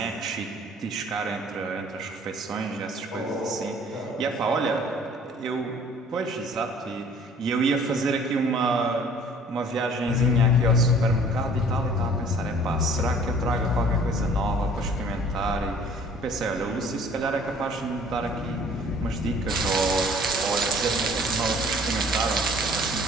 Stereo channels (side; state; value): both; normal; correlation 0.53